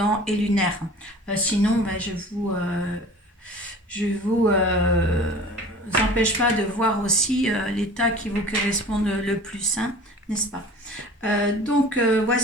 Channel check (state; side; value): normal; both; correlation 0.42